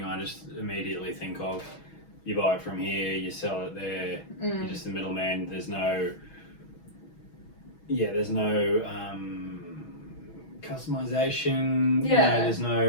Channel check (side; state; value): right; late; 6.2 ms